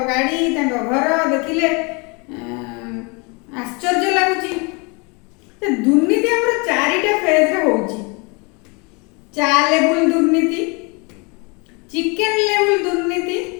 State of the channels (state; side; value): quieter; right; 30.4 dB